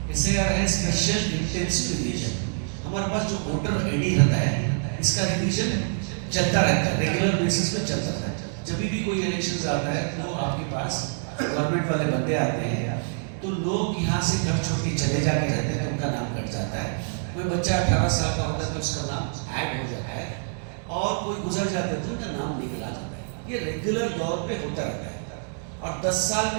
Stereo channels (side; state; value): left; silent; 61 dB below the other